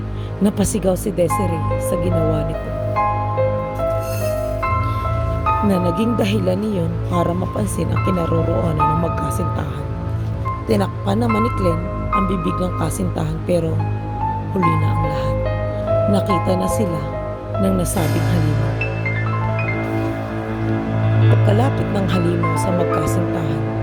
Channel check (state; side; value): identical; both; correlation 1.00